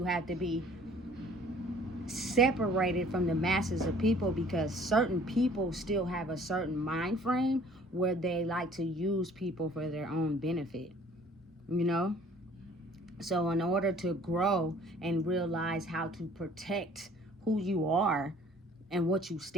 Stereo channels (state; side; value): normal; both; correlation 0.53